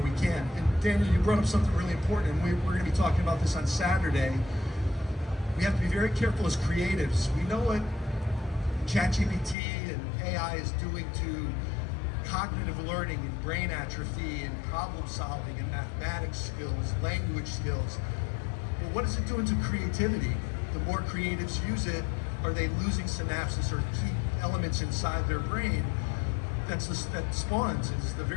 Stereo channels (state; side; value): drops out; right; at 9.6 s